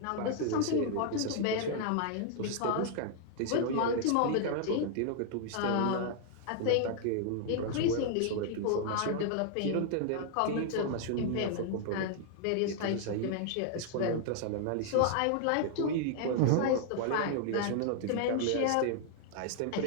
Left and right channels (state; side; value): different; both; correlation -0.01